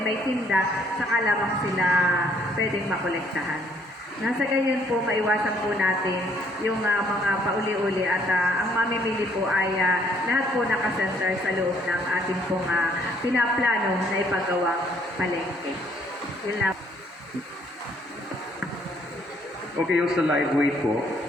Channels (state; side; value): normal; both; correlation 0.64